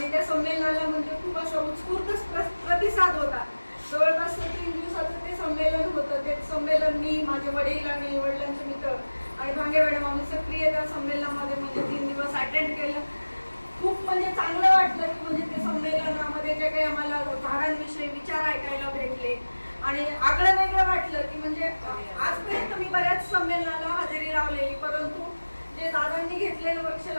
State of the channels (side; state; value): both; inverted; correlation -1.00